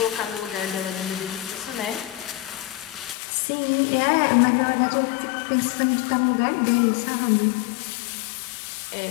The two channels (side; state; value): right; drops out; at 3.2 s